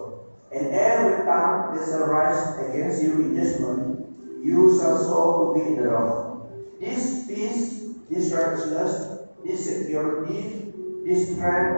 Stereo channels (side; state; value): both; inverted; correlation -1.00